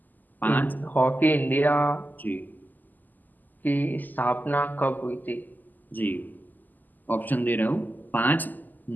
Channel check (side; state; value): right; late; 0.085 ms